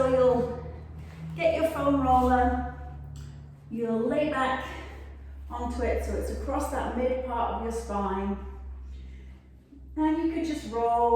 you'll get your foam roller, you'll lay back onto it so it's across that mid part of your spine. And you could just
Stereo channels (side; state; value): both; identical; correlation 1.00